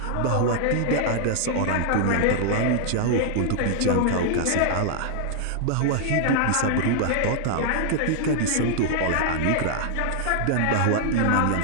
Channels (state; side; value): different; both; correlation 0.00